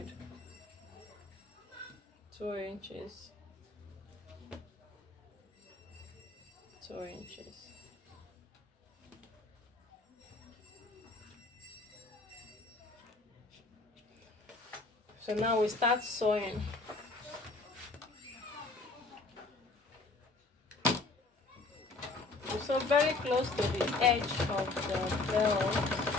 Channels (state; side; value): quieter; right; 3.5 dB